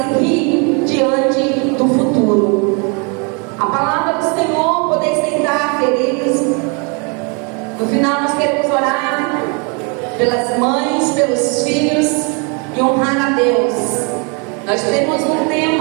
diante do futuro. A palavra do Senhor, poder sentar, queridos. No final nós queremos orar pelas mães, pelos filhos e honrar a Deus. Nós temos um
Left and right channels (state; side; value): quieter; left; 33.9 dB